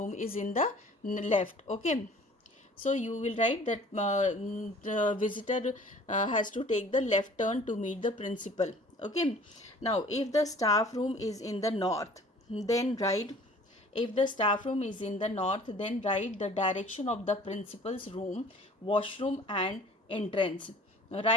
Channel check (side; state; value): both; normal; correlation 0.50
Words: is in the left. Okay, so you will write that the visitor has to take the left turn to meet the principal. Okay, now if the staff room is in the north, then write, if the staff room is in the north, then write the direction of the principal's room, washroom and entrance.